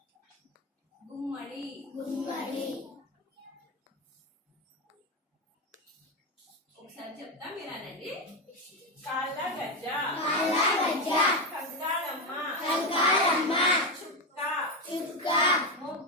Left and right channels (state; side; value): normal; both; correlation 0.12